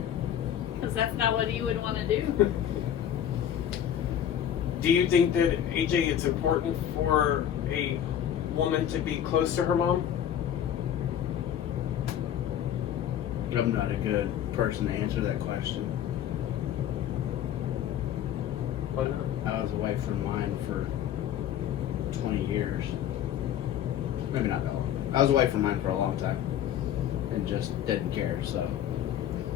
Because that's not what you would want to do. Do you think that, AJ, it's important for a woman to be close to her mom? I'm not a good person to answer that question. Why not? I was away from mine for 20 years. Maybe not that long. I was away from mine for a long time and just didn't care, so.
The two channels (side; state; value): right; quieter; 10.2 dB